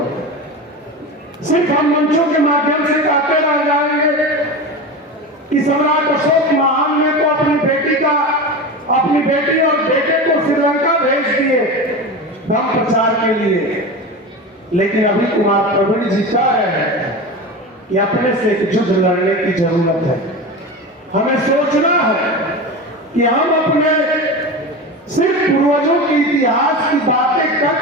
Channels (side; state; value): both; normal; correlation 0.26